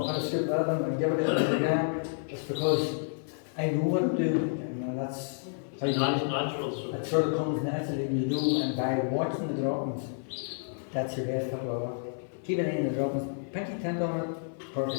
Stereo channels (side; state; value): right; silent; 56 dB below the other